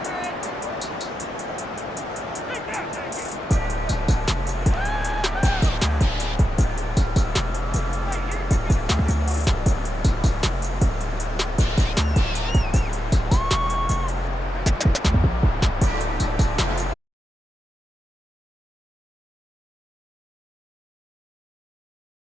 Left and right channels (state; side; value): normal; both; correlation 0.89